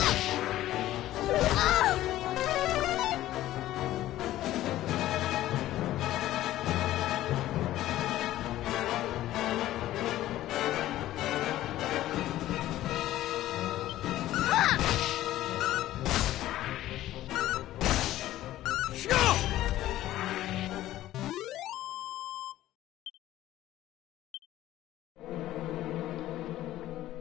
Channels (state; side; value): quieter; right; 14.4 dB